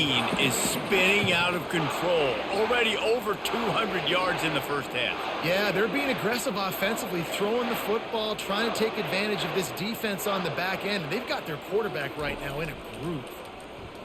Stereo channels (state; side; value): identical; both; correlation 1.00